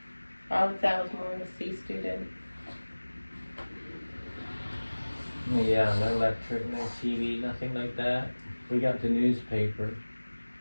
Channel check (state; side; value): inverted; both; correlation -1.00